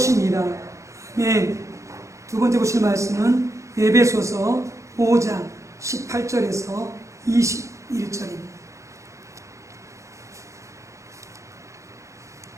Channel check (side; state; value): left; late; 0.15 ms